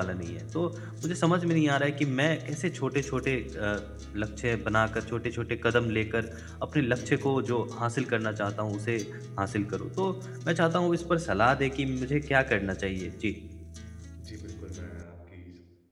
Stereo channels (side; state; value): both; identical; correlation 1.00